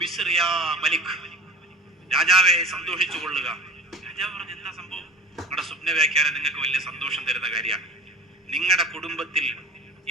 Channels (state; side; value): normal; both; correlation 0.40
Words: മലിക്, രാജാവെ സന്തോഷിച്ചു കൊള്ളുക. രാജാവ് പറഞ്ഞു, എന്താ സംഭവം? നിങ്ങളുടെ സ്വപ്ന വ്യാഖ്യാനം നിങ്ങൾക്ക് വലിയ സന്തോഷം തരുന്ന കാര്യമാണ്. നിങ്ങളുടെ കുടുംബത്തിൽ